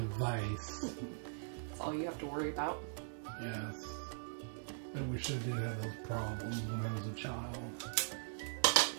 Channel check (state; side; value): silent; left; digital silence